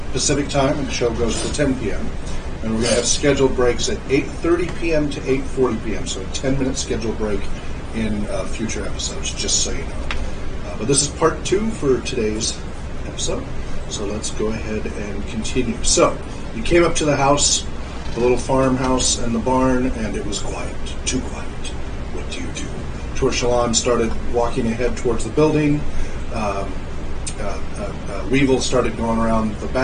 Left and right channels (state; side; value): identical; both; correlation 1.00